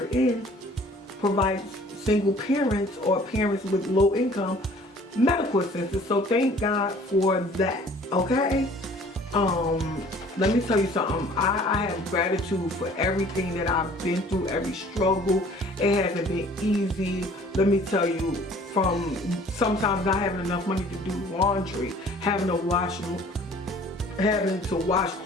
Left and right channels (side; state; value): both; normal; correlation 0.52